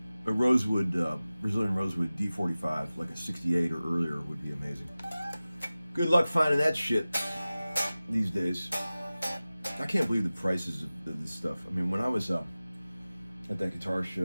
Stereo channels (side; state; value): both; inverted; correlation -0.97